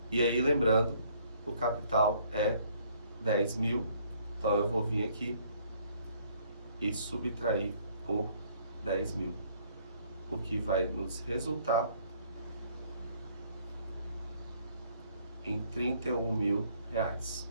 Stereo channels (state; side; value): inverted; both; correlation -0.63